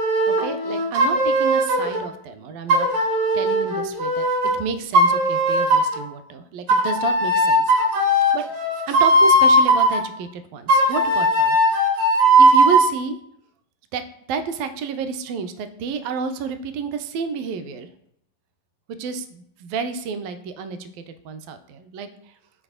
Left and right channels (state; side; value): late; left; 11 ms